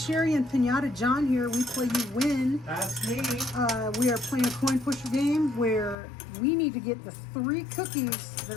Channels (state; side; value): drops out; right; at 6.0 s